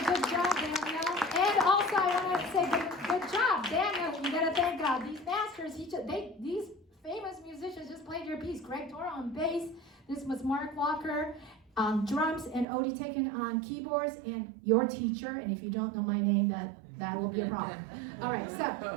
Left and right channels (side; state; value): left; drops out; at 12.7 s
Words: good job, Daniel. And also, I want to say good job, Daniel. You gotta thank God. These masters, these famous musicians just played your piece. Greg Toro on bass. This was Mark Walker on drums and Odie Teken on keyboards, and your teacher. And if you don't know my name, that will be a problem. All right, so